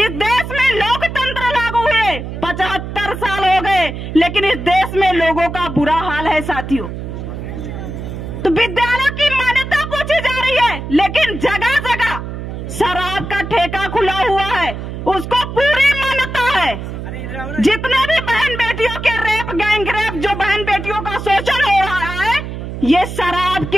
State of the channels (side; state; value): right; noise; hum, 7 dB below the sound